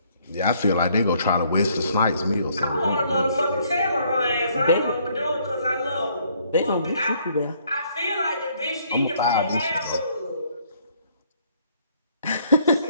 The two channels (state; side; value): inverted; both; correlation -0.65